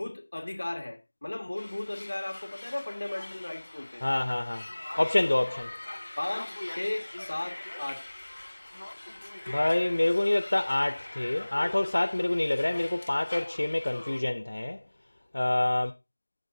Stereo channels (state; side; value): inverted; both; correlation -1.00